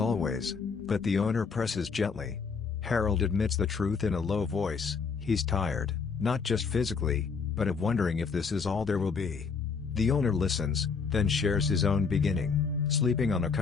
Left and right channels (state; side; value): quieter; right; 5.3 dB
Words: but the owner presses gently. Harold admits the truth in a low voice, he's tired, not just physically, but of wondering if this is all there will be. The owner listens, then shares his own beginning, sleeping on a